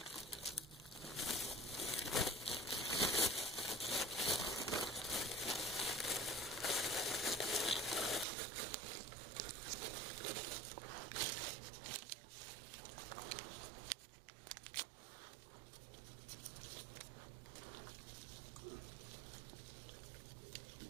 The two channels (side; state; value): left; drops out; at 8.2 s